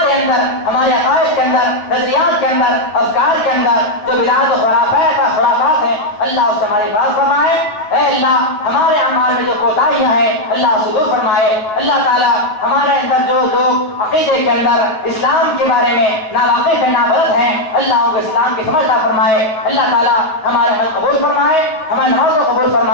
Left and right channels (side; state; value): right; late; 9.5 ms